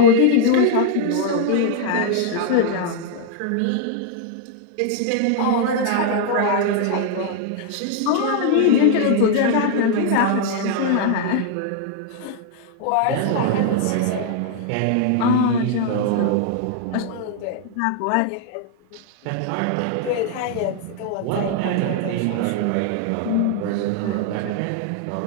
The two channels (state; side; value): different; both; correlation 0.00